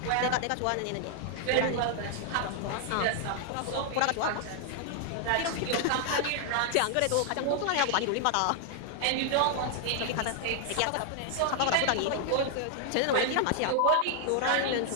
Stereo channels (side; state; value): both; different; correlation 0.00